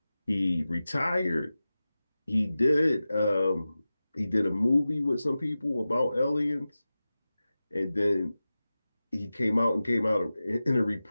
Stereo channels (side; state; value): both; inverted; correlation -0.95